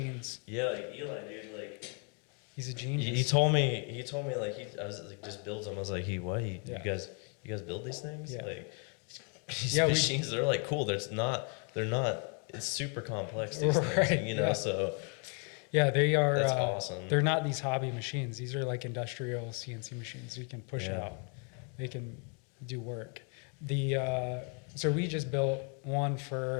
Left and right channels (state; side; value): quieter; right; 38.6 dB